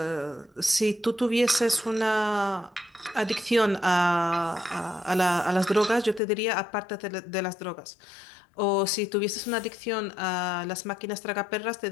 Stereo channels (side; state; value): right; drops out; at 6.2 s